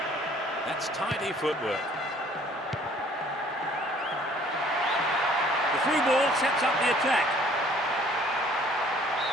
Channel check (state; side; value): normal; both; correlation 0.57